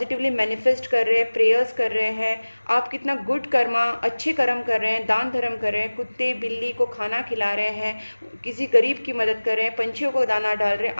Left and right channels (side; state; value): both; inverted; correlation -1.00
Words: मैनिफेस्ट कर रहे हैं, प्रेयर्स कर रहे हैं, आप कितना गुड कर्मा, अच्छे कर्म कर रहे हैं, दान धर्म कर रहे हैं, कुत्ते बिल्ली को खाना खिला रहे हैं, किसी गरीब की मदद कर रहे हैं, पंछियों को दाना डाल रहे हैं,